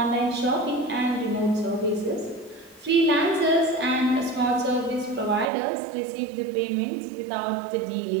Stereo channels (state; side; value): drops out; left; at 5.5 s